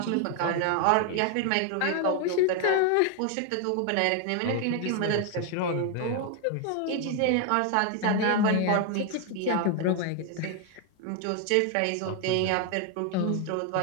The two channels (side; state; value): both; different; correlation 0.00